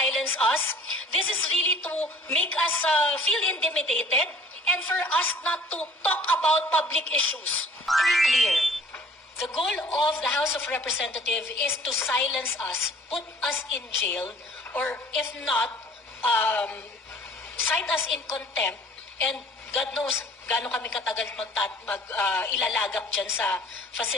us. This is really to make us feel intimidated and for us not to talk about public issues. Very clear. The goal of the House of Representatives is to silence us, put us in jail, or if not, cite us in contempt, and God knows gaano kami katagal ilalagak dyan sa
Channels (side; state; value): both; normal; correlation 0.52